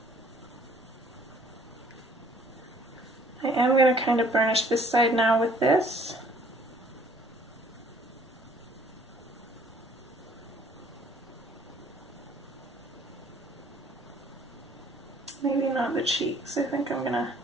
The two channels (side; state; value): right; noise; rumble, 30 dB below the sound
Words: I am going to kind of burnish this side now with this. Maybe not the cheeks. I think I'm going to